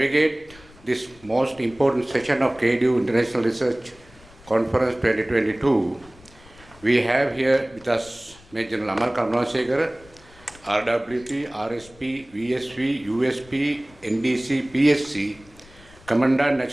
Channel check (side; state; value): left; noise; rumble, 24 dB below the sound